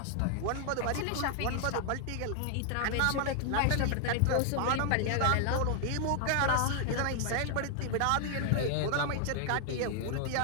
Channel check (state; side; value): different; both; correlation 0.00